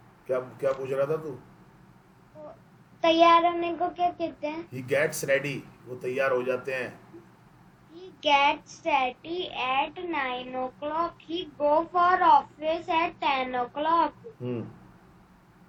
क्या क्या पूछ रहा था तू? तैयार होने को क्या कहते हैं? He gets ready. वो तैयार हो जाते हैं। He gets ready at 9 o'clock. He go for office at 10 o'clock.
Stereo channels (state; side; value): identical; both; correlation 1.00